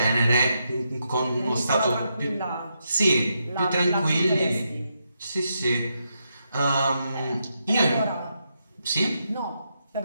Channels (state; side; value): inverted; both; correlation -0.82